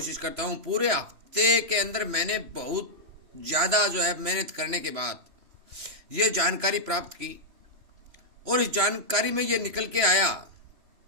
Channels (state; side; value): late; left; 3.1 ms